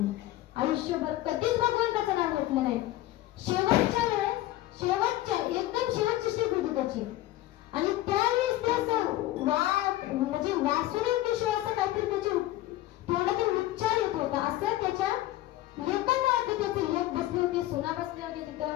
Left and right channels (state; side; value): quieter; right; 15.7 dB